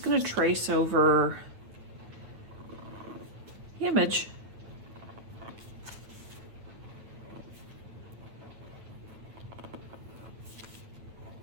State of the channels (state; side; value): late; left; 9.2 ms